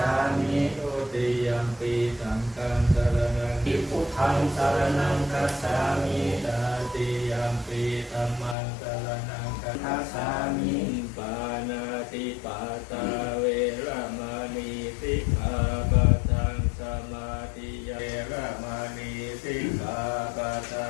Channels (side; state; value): right; drops out; at 8.6 s